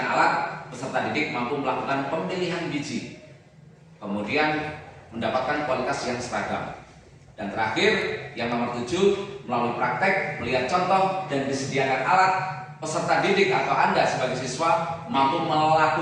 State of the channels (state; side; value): identical; both; correlation 1.00